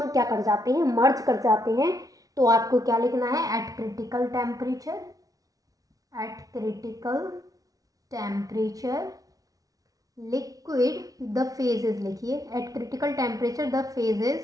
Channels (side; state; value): left; late; 0.18 ms